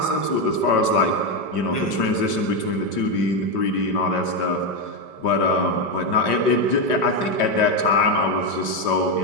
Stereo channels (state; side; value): late; right; 5.1 ms